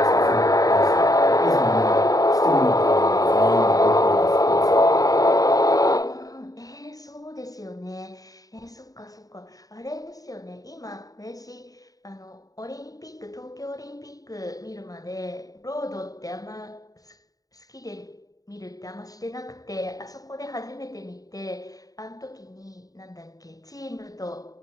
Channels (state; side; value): late; right; 0.18 ms